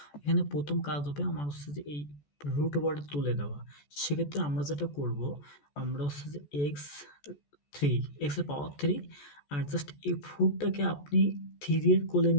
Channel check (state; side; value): late; right; 14 ms